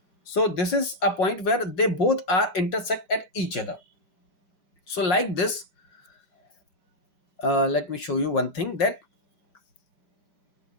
So this is a point where they both are intersect at each other. So like this, let me show you one thing, that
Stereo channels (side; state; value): right; late; 5.1 ms